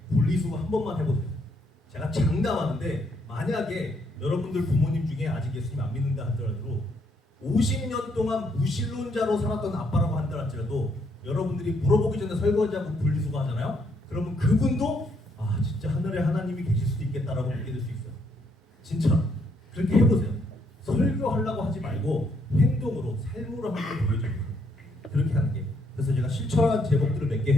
분리수거 한 번만 해보세요. 제가 장담하는데 만약에 여러분들 부모님 중에 아직 예수님 안 믿는다 하더라도 50년 동안 무신론자로 살았던 아빠라고 한다 할지라도 여러분들이 물어보기 전에 설거지하고 분리수거 하잖아요. 그러면 그분도 아 진짜 하늘에 하나님이 계실 수도 있겠다라고 믿게 될 수 있어요. 진짜 그렇게 해보세요. 설교하려고 하지 말고 행동으로 삶으로 한번 보여줘요. 그렇게 하는 게. 그래서 제가 실천한 제목들을 몇 개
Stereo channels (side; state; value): both; normal; correlation 0.72